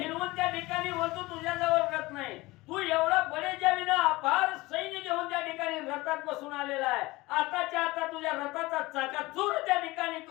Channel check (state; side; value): quieter; right; 20.8 dB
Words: त्या ठिकाणी बोलतो तुझ्याजवळ रथ नाही. तू एवढा बडेजावीनं अपार सैन्य घेऊन त्या ठिकाणी रथात बसून आलेला आहे. आताच्या आता तुझ्या रथाचा चाकाचूर त्या ठिकाणी